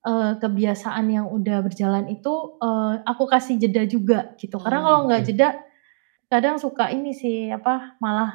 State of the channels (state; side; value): silent; left; digital silence